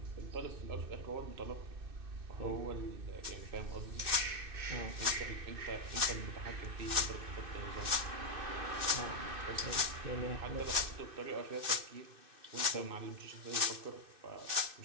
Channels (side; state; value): left; late; 2.6 ms